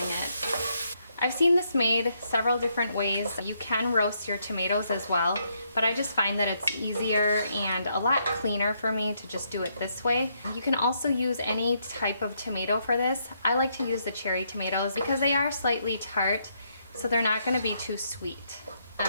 it. I've seen this made several different ways. You can roast your tomatoes as well, but I just find that it's easier and a lot cleaner for me to just do it this way. You can also use any type of tomato for this. I like to use the cherry tomatoes because they are slightly tart, so they're not going to be too sweet.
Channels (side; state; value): both; inverted; correlation -0.75